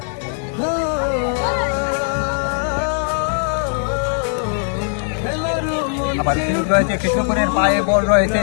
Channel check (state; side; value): silent; right; 59 dB below the other